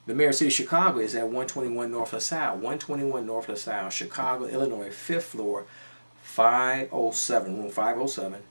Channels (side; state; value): both; inverted; correlation -1.00